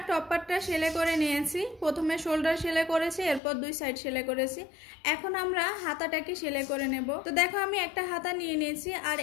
টপ পার্টটা সেলাই করে নিয়েছি। প্রথমে শোল্ডার সেলাই করেছি, এরপর 2 সাইড সেলাই করেছি। এখন আমরা হাতাটাকে সেলাই করে নেব। তো দেখো আমি একটা হাতা নিয়ে নিয়েছি, আর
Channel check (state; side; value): drops out; right; at 3.4 s